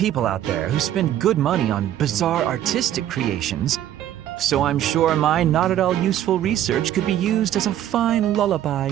out there who spend good money on bizarre artistic creations, so I'm sure my not at all useful research could be used as a fine lullaby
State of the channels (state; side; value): quieter; left; 11.6 dB